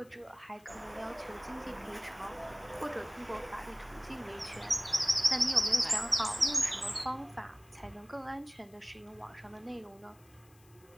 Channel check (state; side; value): noise; left; hiss, 28 dB below the sound